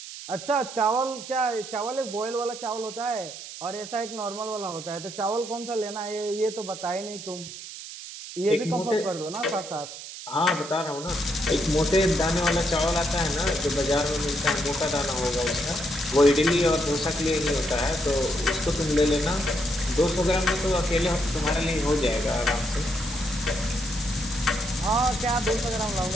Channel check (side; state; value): right; noise; hiss, 11 dB below the sound